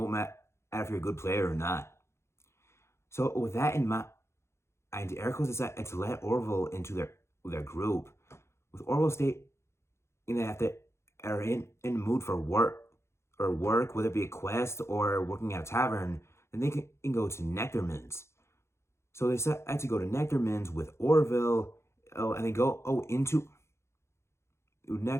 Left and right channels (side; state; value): right; late; 0.13 ms